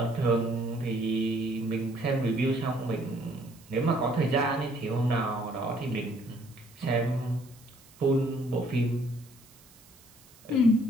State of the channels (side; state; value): right; noise; hiss, 26 dB below the sound